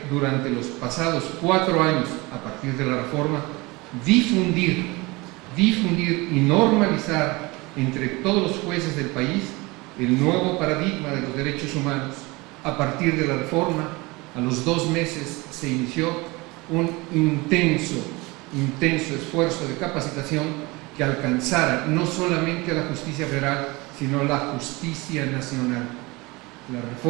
durante los pasados 4 años, a partir de la reforma, difundir y normalizar entre todos los jueces del país el nuevo paradigma de los derechos humanos. A partir de la reforma, a los 2 meses se inició un intenso esfuerzo de capacitación que alcanzara no solamente a la justicia federal, sino la justicia nacional. La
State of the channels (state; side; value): quieter; left; 23.9 dB